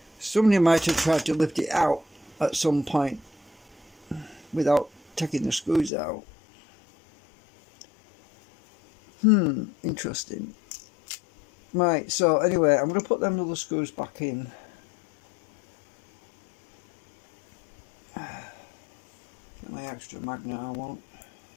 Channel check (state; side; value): drops out; right; at 5.9 s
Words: Somebody might have tried to lift it out at some point without taking the screws out. Interesting. Right, so anyway, I'm going to put them other screws back in. Get my extra magnet I want.